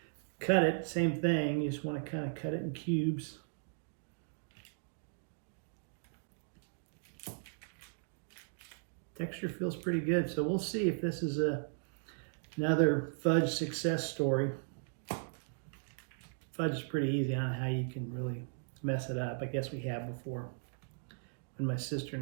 cut it. Same thing, you just wanna kind of cut it in cubes. Texture feels pretty good, so we'll see if this is another fudge success story. Fudge is pretty easy. I don't know how you can really mess it up. I guess we have before when my sister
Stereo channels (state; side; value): silent; left; digital silence